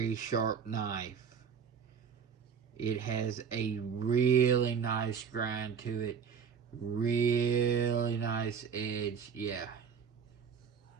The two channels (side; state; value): left; quieter; 6.7 dB